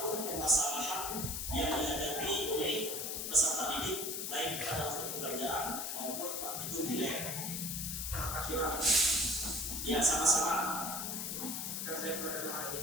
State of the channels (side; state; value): left; noise; hiss, 3 dB below the sound